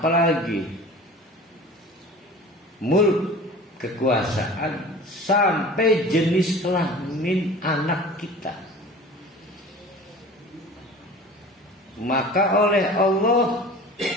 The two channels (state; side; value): normal; both; correlation 0.40